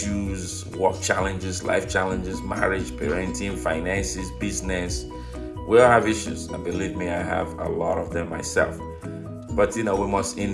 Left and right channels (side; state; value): both; identical; correlation 1.00